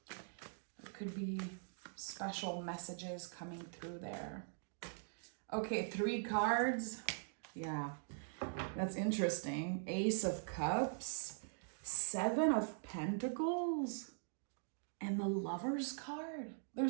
There could be special messages coming through there. Okay, 3 cards. Yeah, that's interesting. Ace of Cups, 7 of Pentacles, and the Lover's card.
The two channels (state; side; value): silent; left; digital silence